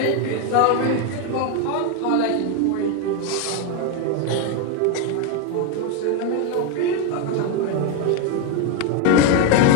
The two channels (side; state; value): both; different; correlation 0.02